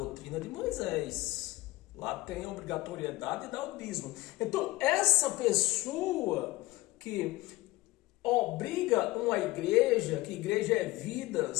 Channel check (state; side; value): quieter; right; 19.4 dB